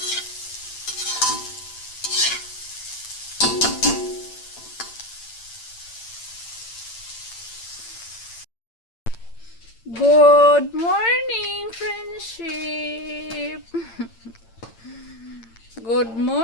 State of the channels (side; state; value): right; late; 8.8 ms